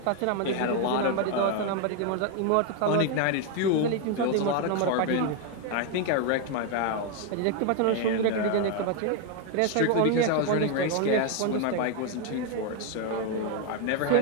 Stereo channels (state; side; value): different; both; correlation 0.01